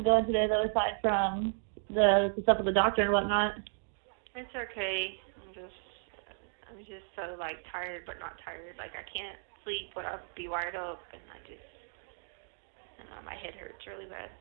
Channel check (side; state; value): left; silent; 55 dB below the other